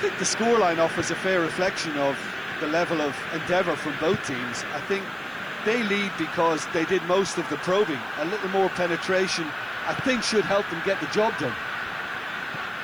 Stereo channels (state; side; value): noise; right; hiss, 28 dB below the sound